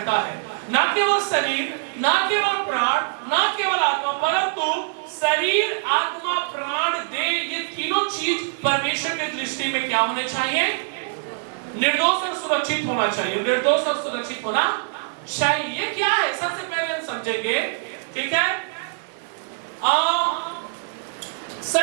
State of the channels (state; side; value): silent; left; digital silence